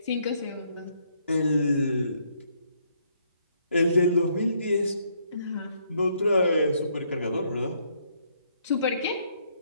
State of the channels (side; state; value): both; inverted; correlation -0.71